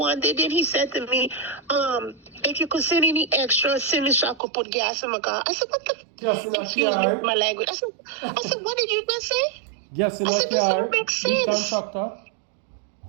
day, then he said to me, if you could send any extra, send me so I could put gas in my car. I said, what the? Gas in the Excuse car. me, my language. I said, what did you just say? Gas in I the said, this car. don't make Big sense. contractor.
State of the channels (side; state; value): left; drops out; at 4.4 s